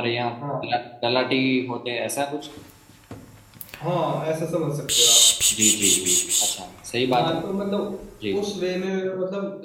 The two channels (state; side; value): identical; both; correlation 1.00